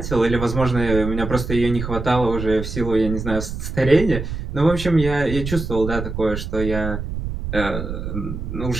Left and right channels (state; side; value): noise; right; rumble, 6 dB below the sound